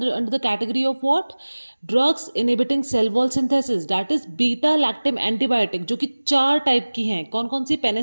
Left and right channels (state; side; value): inverted; both; correlation -1.00